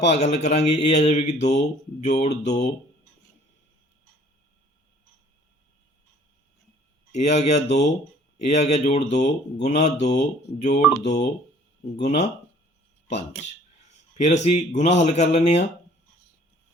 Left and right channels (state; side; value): normal; both; correlation 0.55